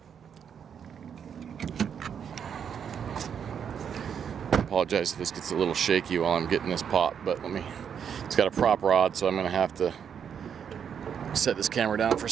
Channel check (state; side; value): quieter; left; 7.7 dB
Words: I apologize if this gets a little shaky while I'm getting this pop, but it's got a prop rod, so I'm gonna have to set this camera down for a